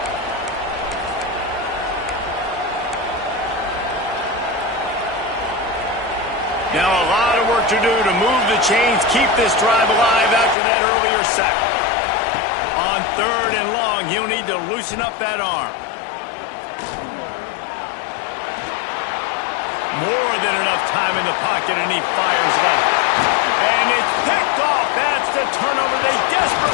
Now a lot of work to do to move the chains, keep this drive alive after that earlier sack. On third and long, he'll need to loosen up that arm. More than enough time in the pocket, and he fires left. And it's picked off. That's the turnover they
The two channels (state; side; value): drops out; right; at 10.6 s